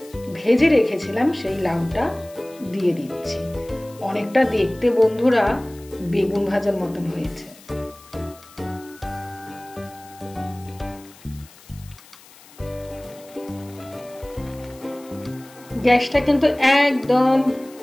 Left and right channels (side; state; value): left; noise; hiss, 23 dB below the sound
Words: ভেজে রেখেছিলাম সেই লাউটা দিয়ে দিচ্ছি। অনেকটা দেখতে বন্ধুরা বেগুন ভাজার মতন হয়েছে। গ্যাসটা কিন্তু একদম